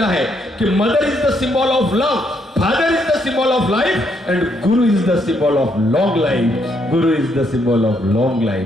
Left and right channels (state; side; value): normal; both; correlation 0.74